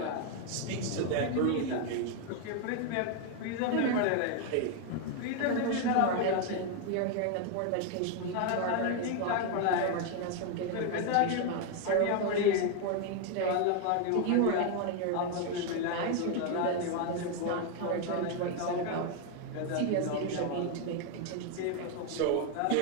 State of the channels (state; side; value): different; both; correlation 0.01